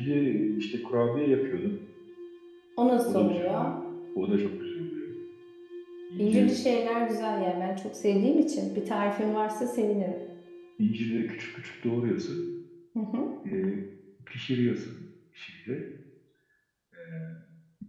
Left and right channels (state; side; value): identical; both; correlation 1.00